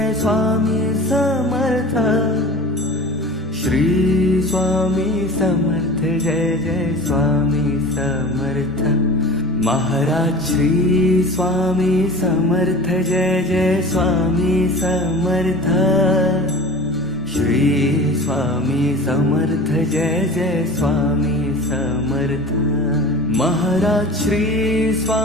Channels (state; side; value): normal; both; correlation 0.38